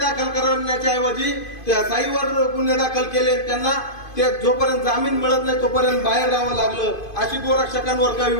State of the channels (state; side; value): late; right; 2.5 ms